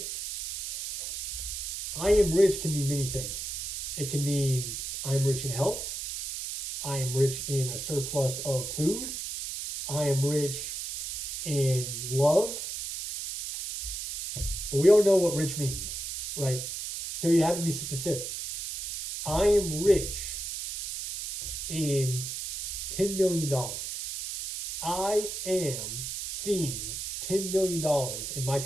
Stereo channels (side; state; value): right; noise; hiss, 5 dB below the sound